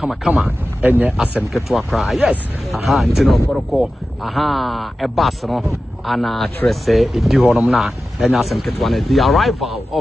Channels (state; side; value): normal; both; correlation 0.94